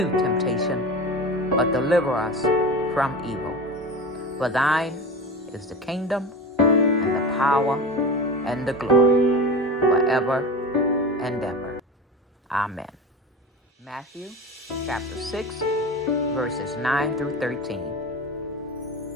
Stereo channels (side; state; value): both; normal; correlation 0.29